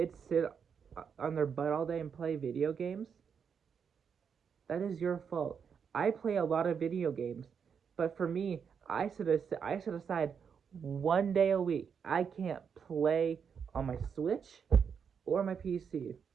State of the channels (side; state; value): left; quieter; 6.8 dB